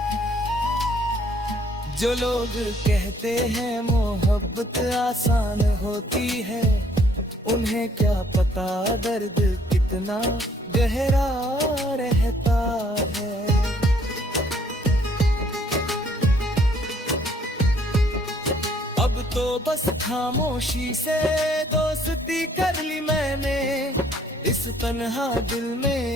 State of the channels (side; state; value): both; normal; correlation 0.63